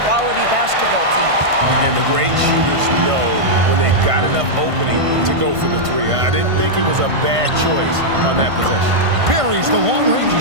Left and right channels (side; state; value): left; late; 1.5 ms